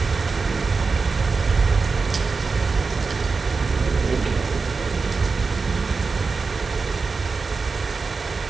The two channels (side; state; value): left; quieter; 4.5 dB